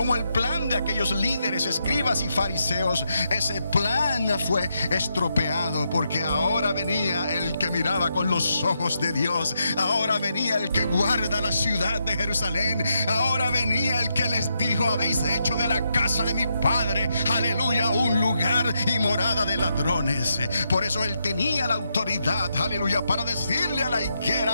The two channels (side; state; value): both; inverted; correlation -0.81